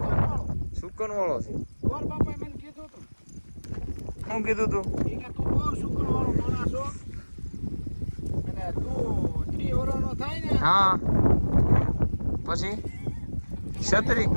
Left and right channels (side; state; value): both; inverted; correlation -1.00